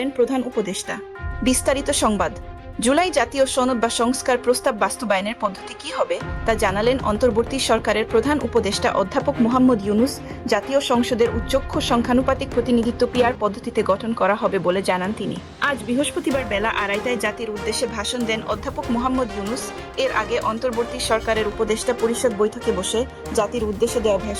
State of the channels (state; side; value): identical; both; correlation 1.00